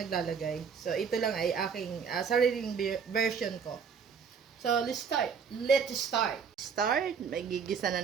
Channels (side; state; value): left; quieter; 6.3 dB